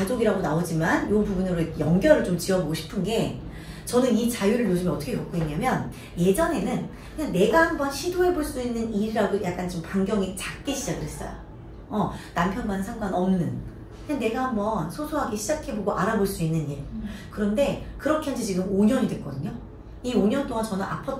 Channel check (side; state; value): both; identical; correlation 1.00